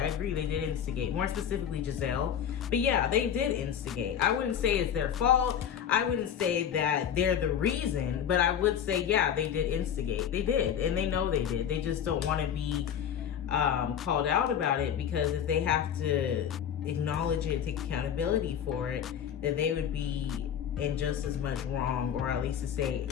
agree, they did instigate. More specifically, Giselle. But, yeah, they did instigate. I wouldn't say it's their fault. I wouldn't say that they're the reason, but I would say, yeah, they did instigate. They did, and they know they did. They just don't want to be called out about it, because if they have to acknowledge it, take accountability for it, then they would be in just as much wrong, or at least to say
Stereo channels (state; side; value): quieter; right; 8.9 dB